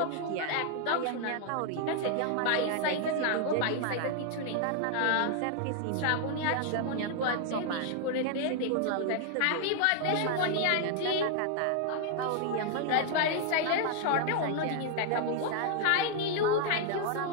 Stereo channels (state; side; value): different; both; correlation 0.00